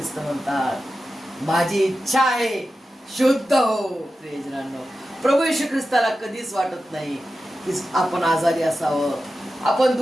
म्हणतात, माझी इच्छा आहे, शुद्ध हो. प्रियजनांनो, प्रभू येशू ख्रिस्ताला कधीच वाटत नाही की आपण आजारी असावं, आपण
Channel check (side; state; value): both; normal; correlation 0.92